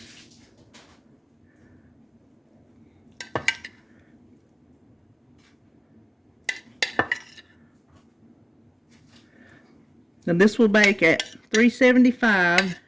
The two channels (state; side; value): identical; both; correlation 1.00